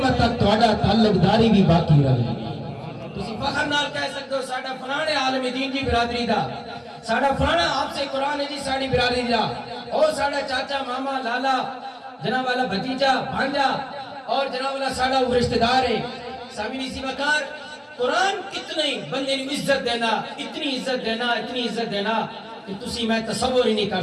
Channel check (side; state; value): both; identical; correlation 1.00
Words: تک تہاڈا تعلق داری بھی باقی رہے گی۔ تسی فخر نال کہہ سکتے ہو ساڈا فلانے عالم دین دی برادری دا، ساڈا فلانا حافظ قرآن ہے جی ساڈی برادری دا، اور ساڈا چاچا ماما لالا جناب والا بھتیجا بھانجا اور جناب والا ساڈا وہ رشتہ دار ہے۔ سامعین اسی وقار قرآن کتنی بندے نو عزت دینا، اتنی عزت دینا، اتنی عزت دینا کہ تسی میں تصور ہی نہیں کر